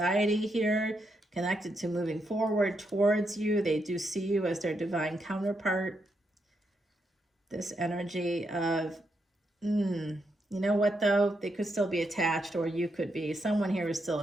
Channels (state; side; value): normal; both; correlation 0.81